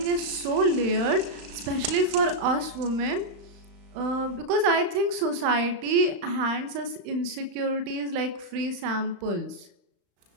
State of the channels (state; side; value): late; left; 35 ms